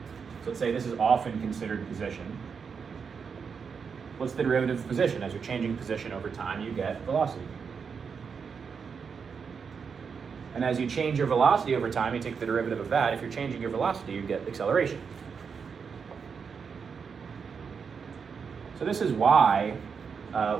So let's say this is often considered position. What's the derivative of position? As you're changing position over time, you get velocity. And as you change your velocity over time, you take the derivative of that. If you're changing your velocity, you get acceleration. So this is why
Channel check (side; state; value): left; quieter; 6.0 dB